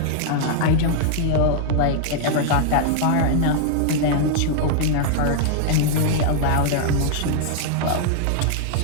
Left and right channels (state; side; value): different; both; correlation -0.01